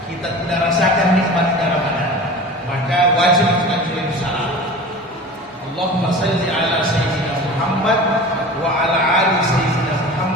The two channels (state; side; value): normal; both; correlation 0.36